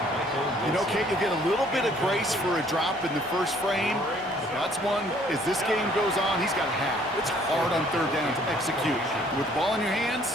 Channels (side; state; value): both; normal; correlation 0.60